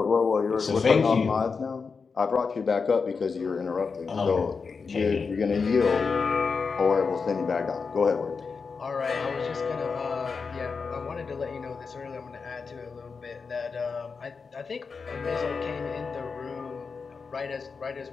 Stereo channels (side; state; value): right; quieter; 5.1 dB